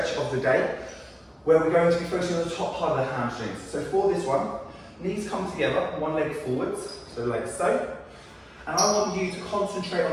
of the day, where we're going to be focusing on the top part of the hamstrings. So for this one, knees come together, one leg forwards, so like so. And I want you to concentrate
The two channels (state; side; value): identical; both; correlation 1.00